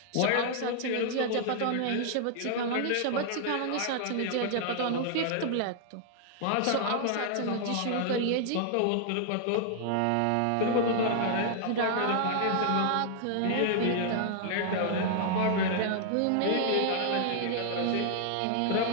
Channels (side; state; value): both; different; correlation -0.01